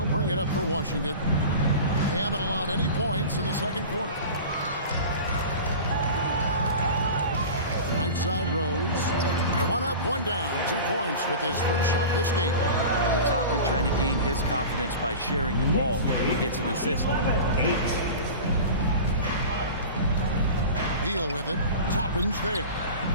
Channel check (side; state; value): both; inverted; correlation -0.34